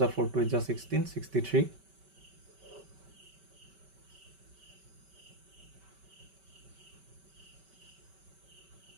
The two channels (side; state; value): left; late; 5.2 ms